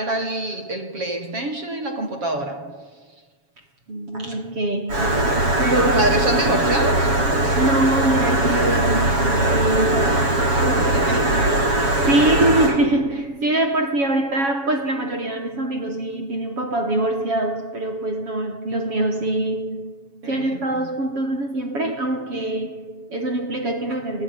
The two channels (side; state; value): left; late; 7.2 ms